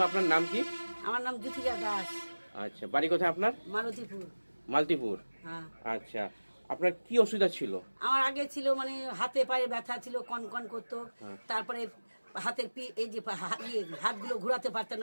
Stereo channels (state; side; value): inverted; both; correlation -1.00